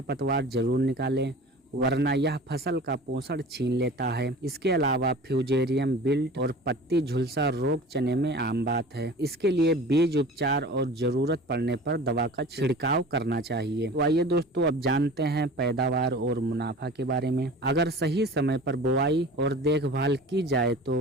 जरूर निकालें, वरना यह फसल का पोषण छीन लेता है। इसके अलावा फ्यूजेरियम विल्ट और पत्ती झुलसा रोग चने में आम बात है। इसके लिए बीज उपचार और जरूरत पड़ने पर दवा का छिड़काव करना चाहिए। तो आइए दोस्तों, अब जानते हैं पैदावार और मुनाफा के बारे में। अगर सही समय पर बुआई और देखभाल की जाए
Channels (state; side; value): normal; both; correlation 0.39